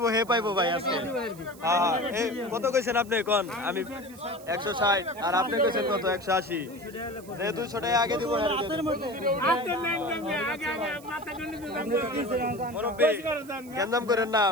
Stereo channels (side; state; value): right; noise; hiss, 21 dB below the sound